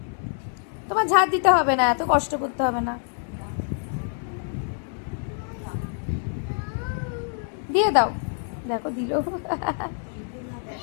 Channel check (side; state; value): right; silent; 61 dB below the other